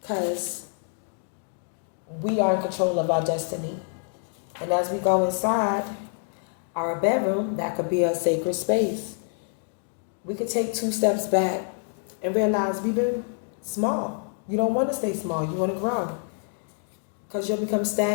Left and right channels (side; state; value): right; silent; 57 dB below the other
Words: Because we are in control of our destiny. And as we go inside our bedroom, that could be a sacred space. We could take 2 steps back and realize we've been small. You don't want to stay small. You want to grow. Because you'll become